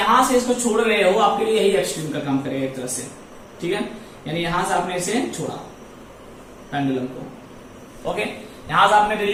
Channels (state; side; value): identical; both; correlation 1.00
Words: से इसको छोड़ रहे हो, आपके लिए यही एक्सट्रीम का काम करेगा एक तरह से, ठीक है। यानी यहां से आपने इसे छोड़ा पेंडुलम को। ओके, यहां से आपने